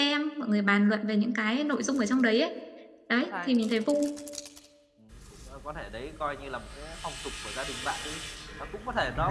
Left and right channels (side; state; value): both; identical; correlation 1.00